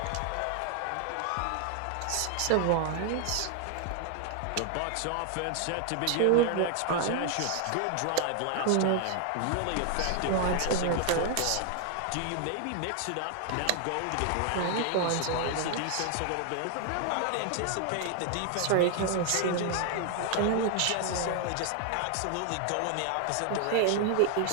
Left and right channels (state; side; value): different; both; correlation 0.00